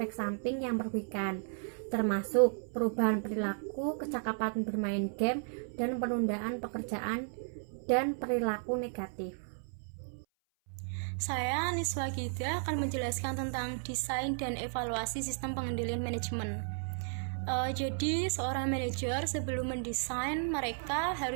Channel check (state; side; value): silent; left; 55 dB below the other